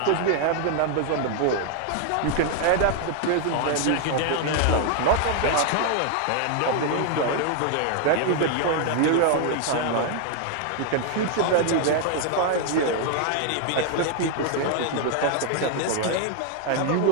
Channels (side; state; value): both; different; correlation 0.00